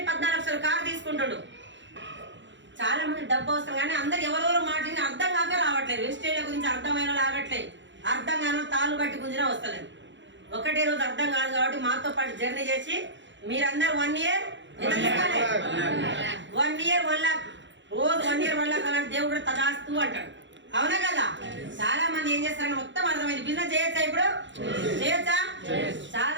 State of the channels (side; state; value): left; late; 0.54 ms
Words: 14 లక్షల కారు తీసుకుంటాడు. చాలా మంది డబ్బు అవసరం, కానీ అందరు ఎవరెవరు మాట్లాడి అర్థం కాక రావట్లేదు. వెస్టేజ్ల గురించి అర్థమైన లాగట్లేదు. అర్థం కాని తాళ్ళు బట్టి గుంజినా వస్తలేదు. ఒకటే రోజు అర్థం కాదు కాబట్టి మాతో పాటు జర్నీ చేసి మీరందరూ 1 ఇయర్ 1 ఇయర్ 1 lakh, రోజు 1 ఇయర్ 1 lakh అలాంటి దేవుడు తదాస్తూ అంటాడు, అవునా కదా? చాలా మంది ఏం చేస్తారని మొత్తం అర్థమైంది. బిజినెస్ చేయొచ్చా? ఇప్పుడు చేయొచ్చా?